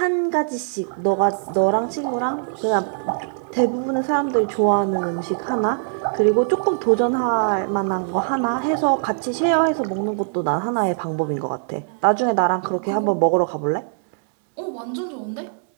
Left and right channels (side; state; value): left; silent; 65 dB below the other